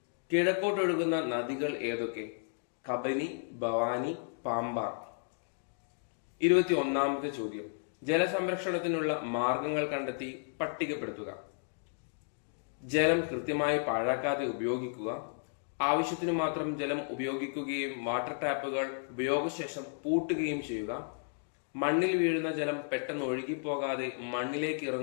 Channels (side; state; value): right; silent; digital silence